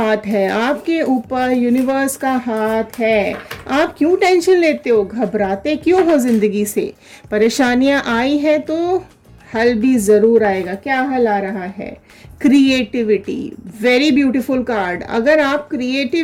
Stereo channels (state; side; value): identical; both; correlation 1.00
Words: है, आपके ऊपर यूनिवर्स का हाथ है। आप क्यों टेंशन लेते हो, घबराते क्यों हो जिंदगी से? परेशानियां आई है तो हल भी जरूर आएगा। क्या हल आ रहा है? क्रिएटिविटी। Very beautiful card. अगर आप